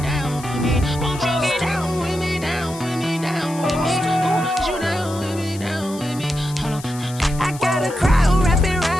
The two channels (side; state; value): left; noise; hiss, 16 dB below the sound